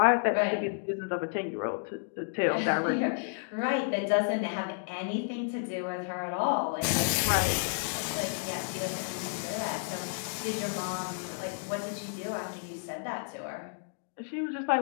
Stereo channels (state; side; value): silent; right; digital silence